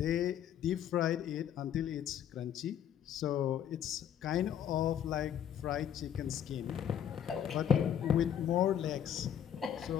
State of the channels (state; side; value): quieter; right; 9.6 dB